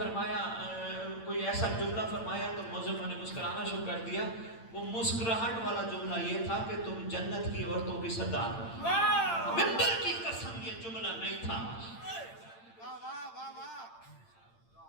کوئی ایسا جملہ فرمایا تو معظمہ نے مسکرانا شروع کر دیا. وہ مسکراہٹ والا جملہ یہ تھا کہ تم جنت کی عورتوں کی سردار ہو. ممبر کی قسم یہ جملہ نہیں تھا.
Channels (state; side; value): late; right; 8.8 ms